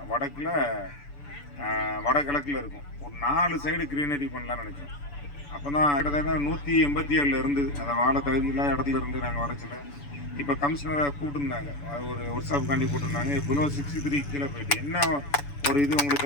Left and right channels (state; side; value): late; right; 6.9 ms